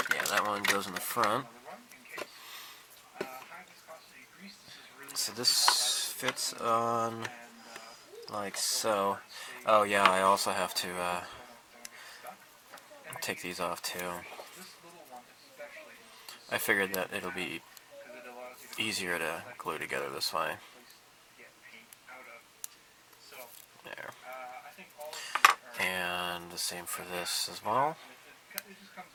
that one goes in the front. So this fits on like so. Oh yeah, I also have to take these off too. I figured that it'll be easier to glue together this way. There. And the same for this as well.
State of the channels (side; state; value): both; identical; correlation 1.00